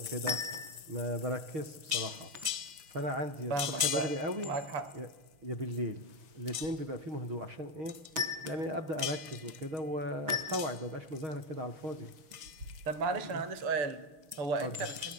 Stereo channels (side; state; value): left; late; 6.4 ms